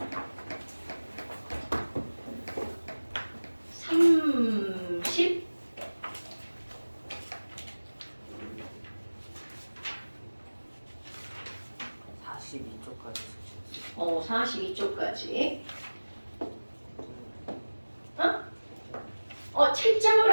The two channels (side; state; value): both; inverted; correlation -1.00